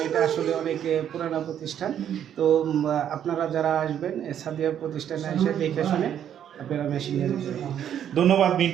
এটা আসলে অনেক পুরানো প্রতিষ্ঠান। তো আপনারা যারা আসবেন সাদিয়া প্রতিষ্ঠানে এসে দেখে শুনে আপনারা মেশিন নিয়ে যেতে পারেন। ধন্যবাদ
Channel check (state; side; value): quieter; left; 9.7 dB